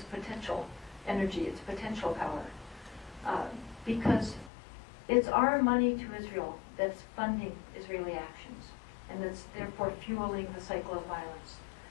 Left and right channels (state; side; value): drops out; right; at 4.5 s